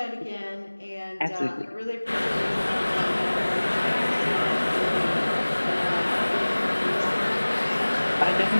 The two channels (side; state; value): both; inverted; correlation -1.00